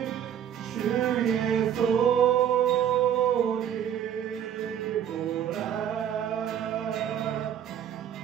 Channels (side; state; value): left; quieter; 9.5 dB